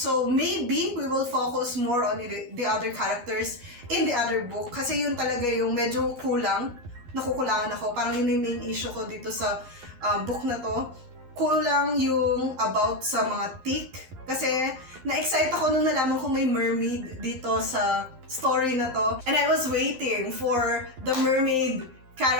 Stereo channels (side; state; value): left; late; 11 ms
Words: maybe we will focus more on the other characters in the other book. Kasi yun talaga yung medyo kulang. Nakukulangan ako. Parang yun yung main issue ko dito sa book na to. Kulang yung about sa mga tick. Kasi na-excite ako nung nalaman ko may mermaid dito sa story na to. And I was waiting for the mermaid